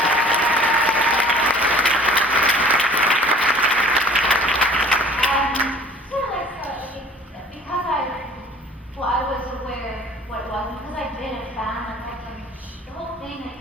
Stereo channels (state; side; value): normal; both; correlation 0.50